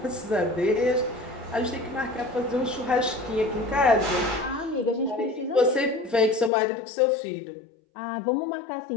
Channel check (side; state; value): right; drops out; at 6.5 s